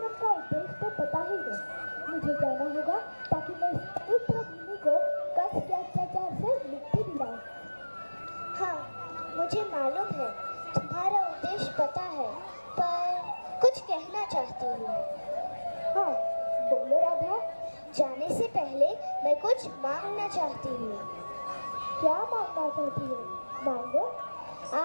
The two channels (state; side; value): inverted; both; correlation -1.00